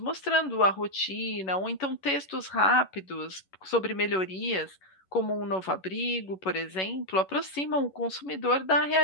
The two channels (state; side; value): late; right; 11 ms